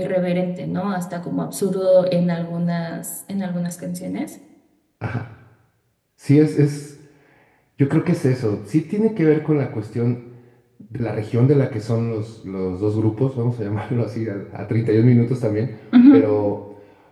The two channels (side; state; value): both; identical; correlation 1.00